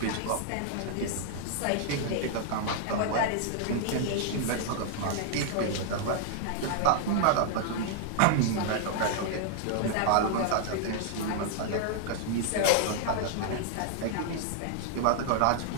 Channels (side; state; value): both; different; correlation -0.01